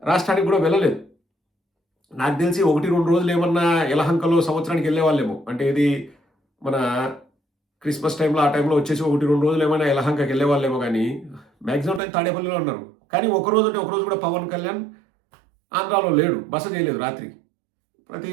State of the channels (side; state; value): left; drops out; at 12.0 s